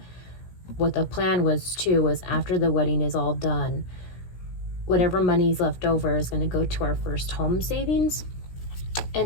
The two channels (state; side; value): late; right; 17 ms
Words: what the plan was too, was after the wedding is all done, whatever money's left over is going to go to our first home savings.